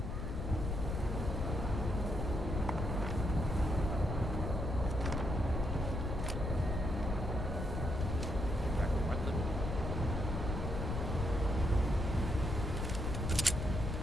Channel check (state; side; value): noise; left; rumble, 2 dB below the sound